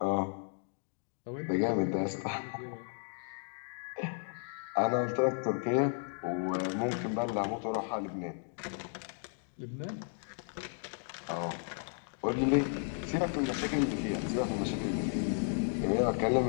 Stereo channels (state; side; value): silent; right; 55 dB below the other